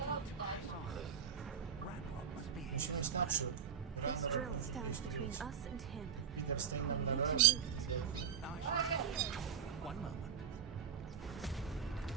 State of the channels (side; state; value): left; quieter; 7.6 dB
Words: This drill stands between us and him. We need to move it. One moment.